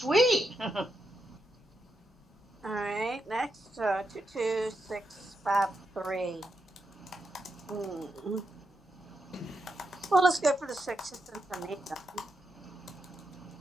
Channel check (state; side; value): normal; both; correlation 0.84